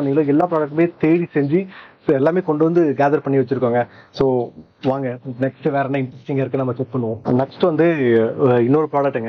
எல்லா ப்ராடக்ட்டுமே தேடி செஞ்சு எல்லாமே கொண்டு வந்து கேதர் பண்ணி வச்சிருக்கோங்க. ஸோ வாங்க நெக்ஸ்ட் வேற என்ன இன்ட்ரெஸ்டிங்காக இருக்கு நம்ம செக் பண்ணுவோம். நெக்ஸ்ட் வந்து இன்னொரு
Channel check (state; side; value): identical; both; correlation 1.00